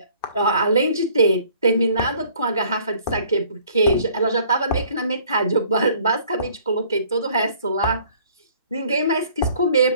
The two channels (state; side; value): inverted; both; correlation -0.57